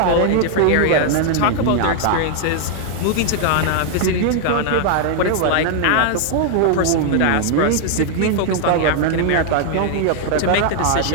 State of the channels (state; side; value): different; both; correlation 0.00